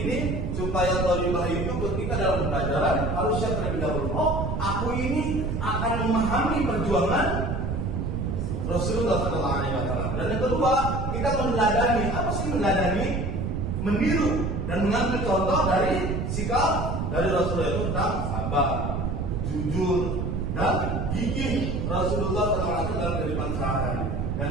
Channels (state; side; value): noise; right; rumble, 1 dB below the sound